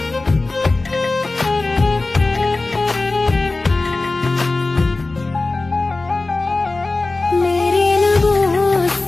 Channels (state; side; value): quieter; right; 3.3 dB